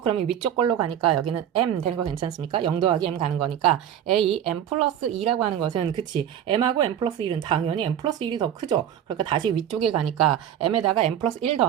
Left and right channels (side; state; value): left; quieter; 10.1 dB